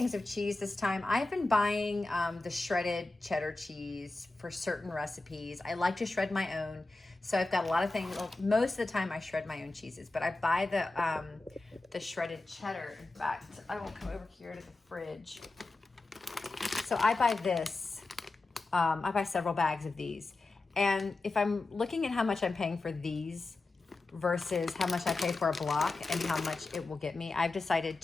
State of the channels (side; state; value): right; quieter; 3.3 dB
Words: of cheese this time. I've been buying the shredded cheddar cheese for certain recipes. I like to shred my own. So I've got a lot of things. Well, most of the time I shred my own cheeses, but I buy the shredded cheddar. In fact, I will come over here to the fridge. So I buy this. I buy several bags of these. And if I'm looking at how much I'm paying for these versus how much I pay for a block and how much it will get me, I've decided